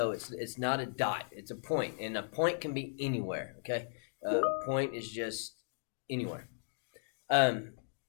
it's not a dot; it's a point, and a point can be anywhere. Okay, point is just anywhere. Um,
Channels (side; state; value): right; silent; digital silence